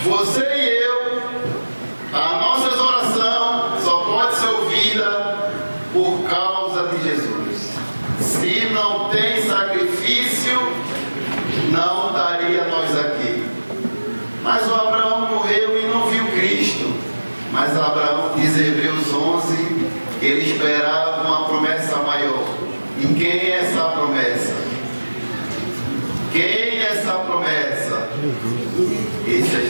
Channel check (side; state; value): both; inverted; correlation -1.00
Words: Você e eu, as nossas orações só pode ser ouvida por causa de Jesus. Se não tem sacrifício, não estaria nós aqui. Mas o Abraão morreu e não viu Cristo. Mas Abraão, diz Hebreus 11, ele esperava uma promessa maior. E quem é essa promessa? Quem é essa promessa? Esse é